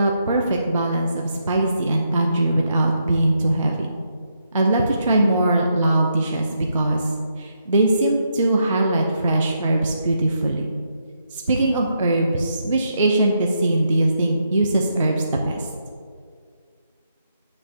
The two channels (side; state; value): both; inverted; correlation -0.79